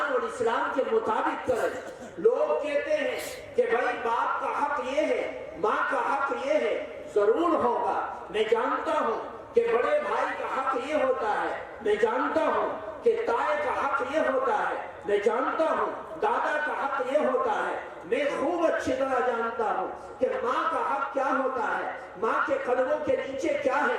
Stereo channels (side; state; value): both; identical; correlation 1.00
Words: اور اسلام کے مطابق کریں۔ لوگ کہتے ہیں کہ بھائی باپ کا حق یہ ہے، ماں کا حق یہ ہے، ضرور ہوگا، میں جانتا ہوں کہ بڑے بھائی کا حق یہ ہوتا ہے، میں جانتا ہوں کہ تائے کا حق یہ ہوتا ہے، میں جانتا ہوں دادا کا حق یہ ہوتا ہے، میں خوب اچھی طرح جانتا ہوں کہ ماں کا حق کیا ہوتا ہے، ماں کے قدموں کے نیچے کیا